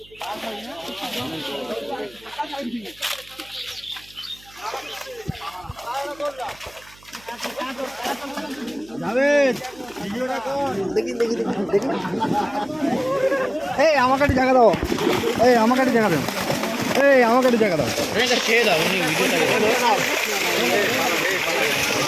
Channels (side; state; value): right; noise; hum, 26 dB below the sound